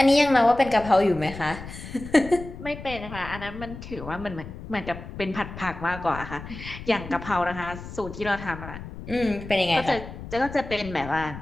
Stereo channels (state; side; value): noise; left; rumble, 12 dB below the sound